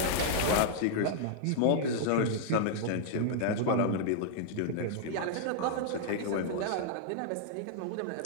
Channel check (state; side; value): different; both; correlation -0.01